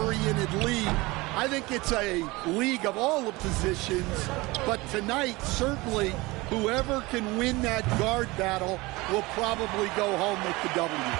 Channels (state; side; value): quieter; left; 22.3 dB